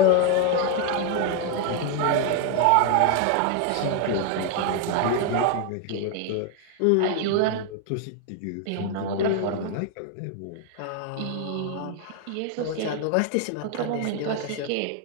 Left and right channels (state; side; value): different; both; correlation 0.00